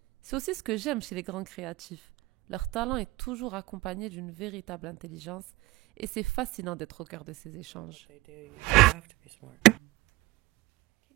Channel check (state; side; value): quieter; left; 19.9 dB